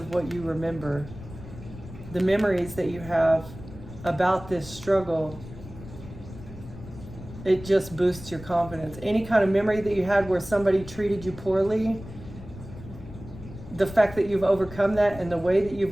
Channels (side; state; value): left; noise; rumble, 15 dB below the sound